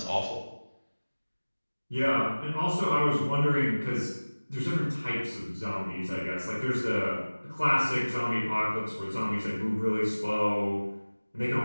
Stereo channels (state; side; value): inverted; both; correlation -1.00